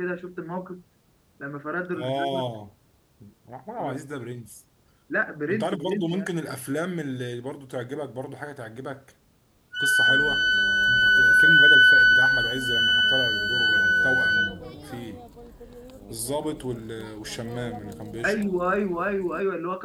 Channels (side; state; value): both; identical; correlation 1.00